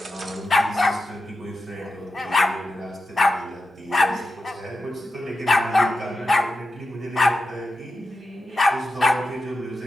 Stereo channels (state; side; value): normal; both; correlation 0.89